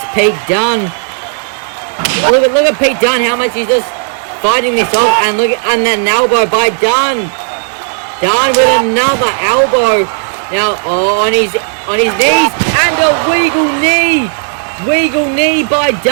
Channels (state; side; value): silent; left; digital silence